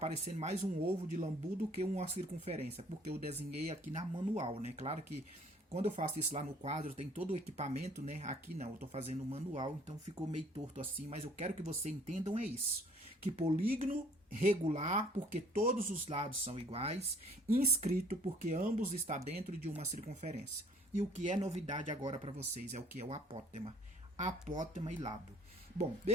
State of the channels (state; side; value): normal; both; correlation 0.57